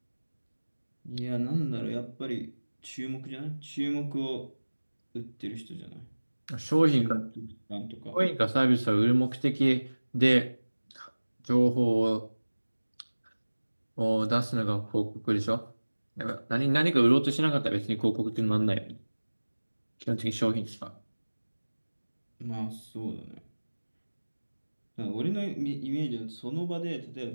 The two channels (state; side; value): inverted; both; correlation -1.00